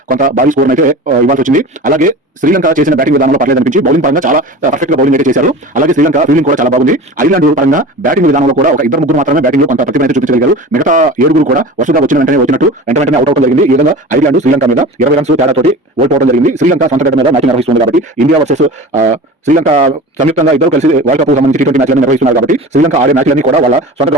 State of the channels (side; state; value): both; normal; correlation 0.35